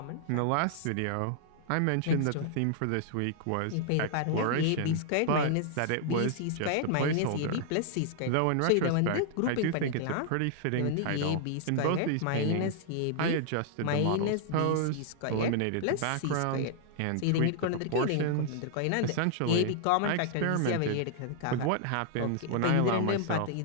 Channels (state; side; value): different; both; correlation -0.01